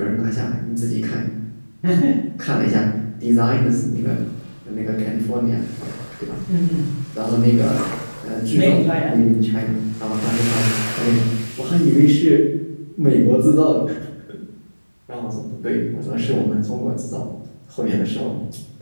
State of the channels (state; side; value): inverted; both; correlation -1.00